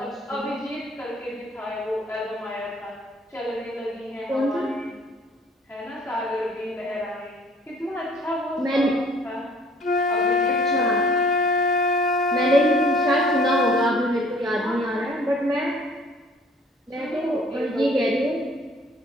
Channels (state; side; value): normal; both; correlation 0.55